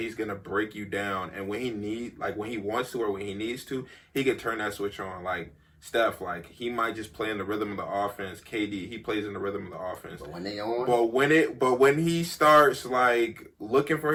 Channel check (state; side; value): identical; both; correlation 1.00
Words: gonna break you down. And when he wants to or when he needs to, he can turn that switch on. Like Steph, like, he might just play in the rhythm of the offense. KD, he plays in the rhythm of the offense. But when they on, but when he starts like looking for